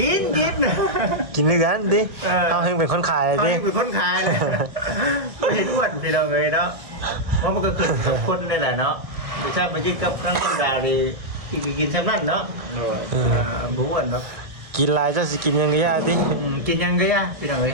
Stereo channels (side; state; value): left; late; 1.6 ms